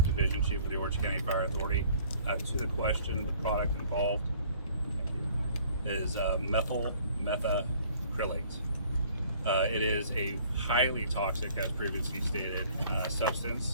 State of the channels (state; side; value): inverted; both; correlation -0.55